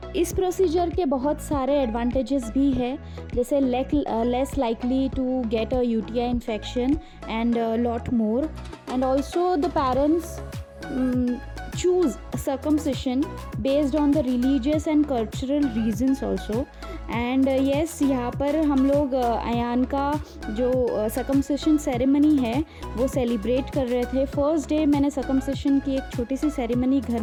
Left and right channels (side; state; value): both; identical; correlation 1.00